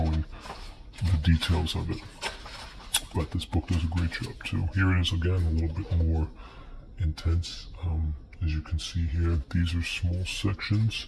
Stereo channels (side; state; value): both; identical; correlation 1.00